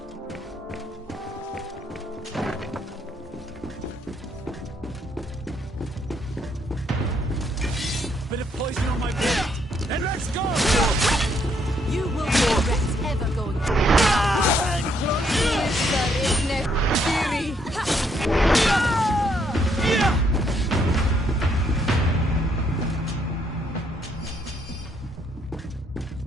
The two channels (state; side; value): normal; both; correlation 0.71